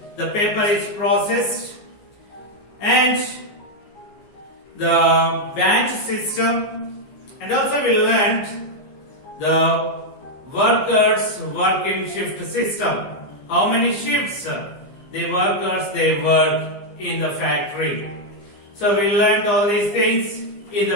the paper is processed? And the batch system, and also we learned the workers working shift system. How many shifts the workers they work in the factory. So we learned all these things in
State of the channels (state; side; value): late; right; 15 ms